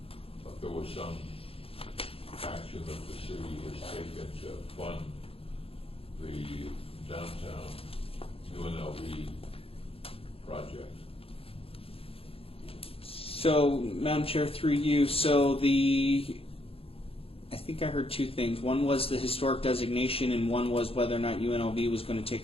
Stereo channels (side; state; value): right; late; 0.27 ms